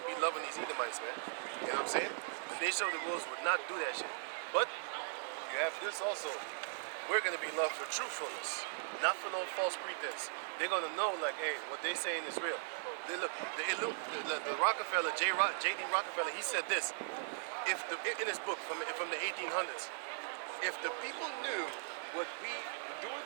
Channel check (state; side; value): silent; left; digital silence